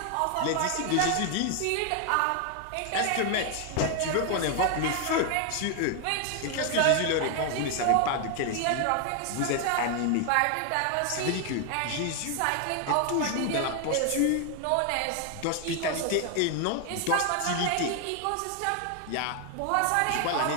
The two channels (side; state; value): both; different; correlation 0.00